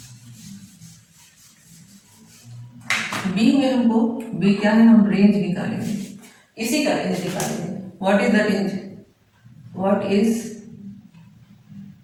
बी में हमको, बी क्या है, हम रेंज निकालेंगे, इसी का रेंज निकालेंगे। What is the range, what is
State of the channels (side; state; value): both; identical; correlation 1.00